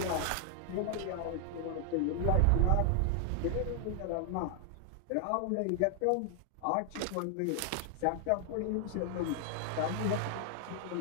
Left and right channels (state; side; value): different; both; correlation 0.00